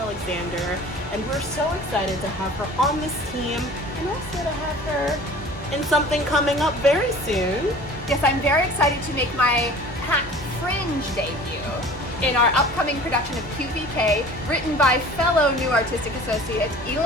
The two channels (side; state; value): both; normal; correlation 0.44